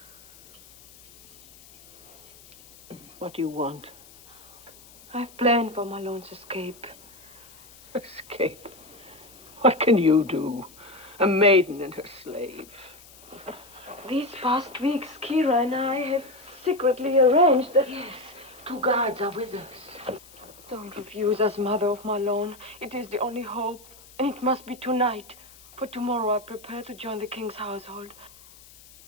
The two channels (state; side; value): noise; left; hiss, 22 dB below the sound